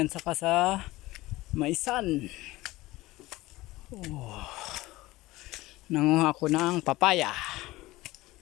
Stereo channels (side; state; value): right; quieter; 18.8 dB